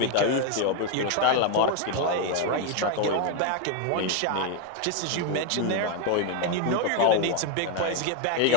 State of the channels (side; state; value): both; different; correlation 0.01